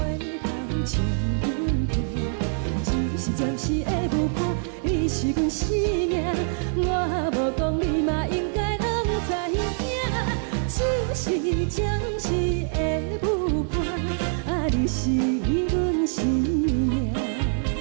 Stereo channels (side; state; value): left; silent; 58 dB below the other